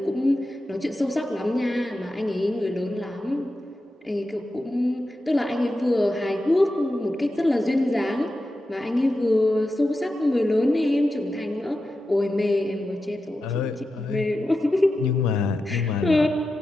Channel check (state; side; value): normal; both; correlation 0.91